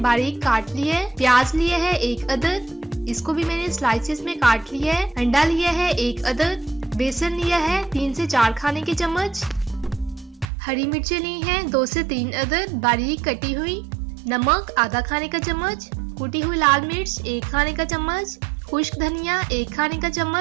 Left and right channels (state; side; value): drops out; left; at 10.5 s